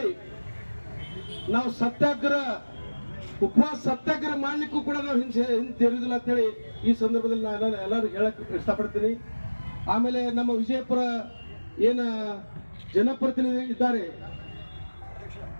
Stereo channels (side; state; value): both; inverted; correlation -1.00